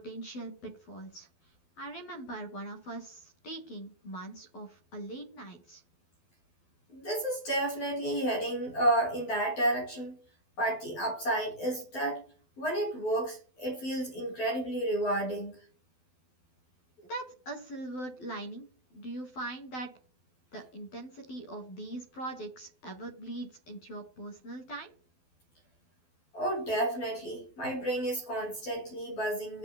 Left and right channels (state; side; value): late; right; 12 ms